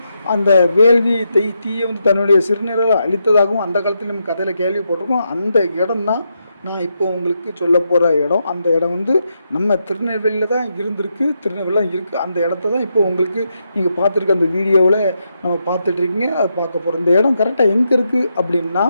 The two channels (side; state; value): both; inverted; correlation -0.83